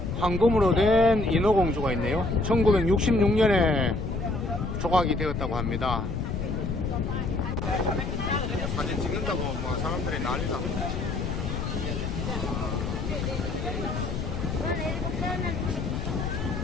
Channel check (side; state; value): left; noise; rumble, 3 dB below the sound